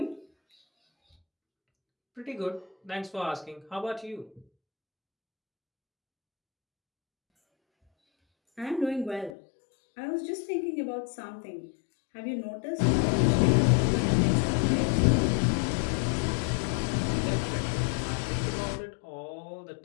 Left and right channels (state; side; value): drops out; right; at 9.3 s